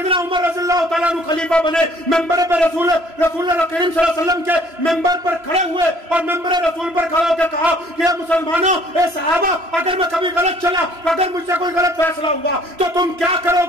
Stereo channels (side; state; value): left; late; 3.0 ms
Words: عمر رضی اللہ تعالیٰ عنہ خلیفہ بنے، ممبر پہ رسول اللہ کریم صلی اللہ علیہ وسلم کے ممبر پر کھڑے ہوئے اور ممبر رسول پر کھڑے ہو کے کہا کہ اے مسلمانوں، اے صحابہ، اگر میں کبھی غلط چلا، اگر مجھ سے کوئی غلط فیصلہ ہوا تو تم کیا کرو